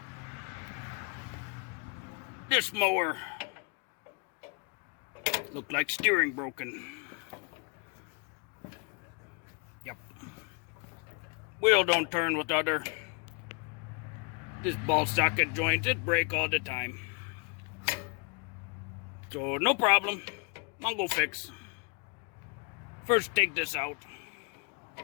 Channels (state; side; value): quieter; right; 32.9 dB